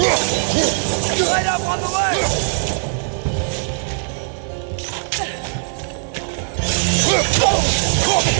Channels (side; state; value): left; silent; 55 dB below the other